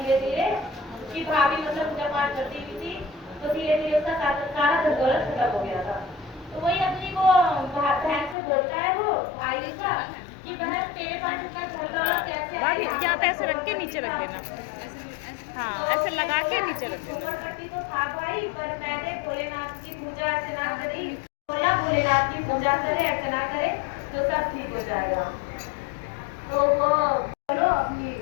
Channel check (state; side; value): drops out; right; at 8.3 s